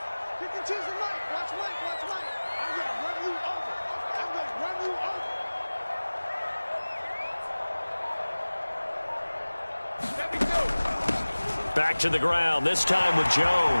Back to the ground, this time with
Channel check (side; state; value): both; inverted; correlation -1.00